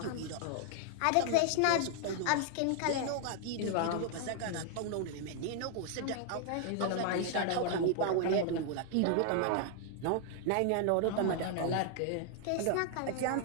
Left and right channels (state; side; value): different; both; correlation 0.00